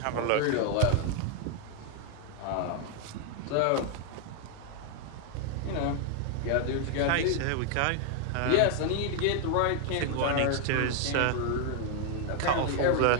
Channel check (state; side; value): different; both; correlation 0.00